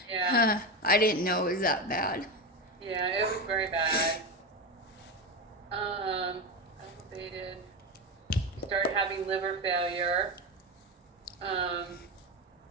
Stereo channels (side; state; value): both; normal; correlation 0.17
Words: Yeah. I didn't know it was that bad. Yeah, it was very bad. Elevated. You started having liver failure.